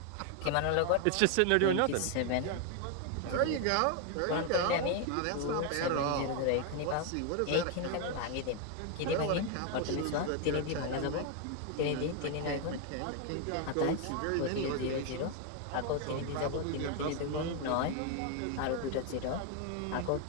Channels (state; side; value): different; both; correlation 0.01